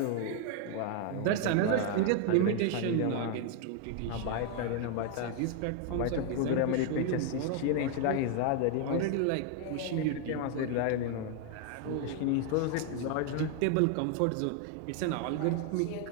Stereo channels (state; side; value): different; both; correlation 0.00